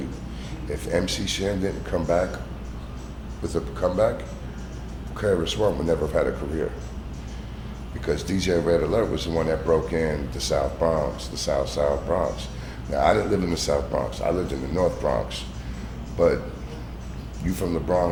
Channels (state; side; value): identical; both; correlation 1.00